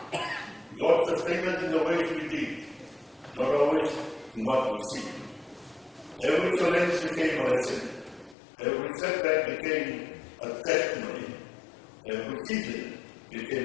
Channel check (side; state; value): right; drops out; at 8.3 s